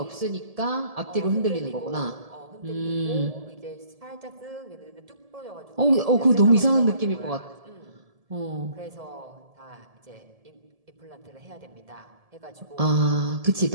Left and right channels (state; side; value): late; left; 1.7 ms